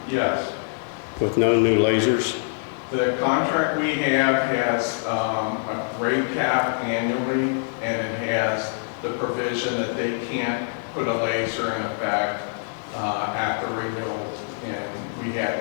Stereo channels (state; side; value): silent; right; digital silence